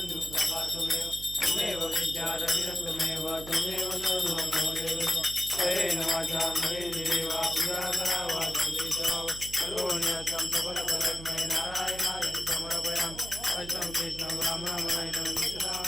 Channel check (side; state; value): right; noise; hum, 13 dB below the sound